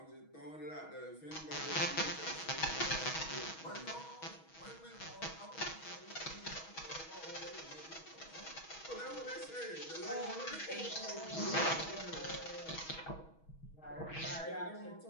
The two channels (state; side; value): late; right; 6.3 ms